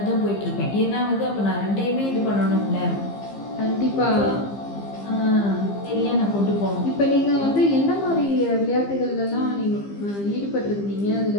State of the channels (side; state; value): right; late; 15 ms